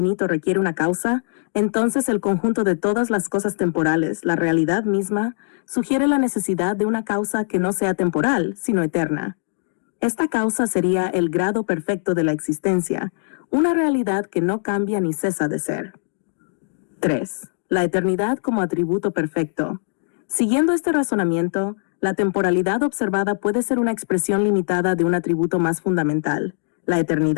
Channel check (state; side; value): silent; right; digital silence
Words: requiere una causa, entonces el conjunto de todas las cosas temporales, la realidad misma, sugiere la necesidad de una causa que no sea temporal, sino eterna. Esta causa sería el grado perfecto de la existencia, una realidad que no cambia ni cesa de ser. 3. La eternidad como atributo perfecto. Siguiendo este razonamiento, la temporalidad observada puede ser una expresión limitada de un atributo más fundamental, la